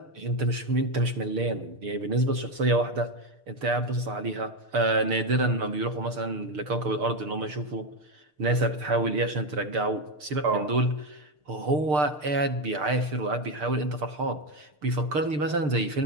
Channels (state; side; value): late; left; 6.7 ms